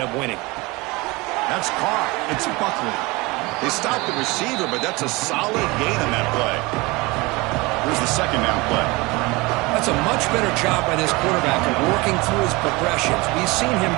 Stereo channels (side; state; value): left; quieter; 23.8 dB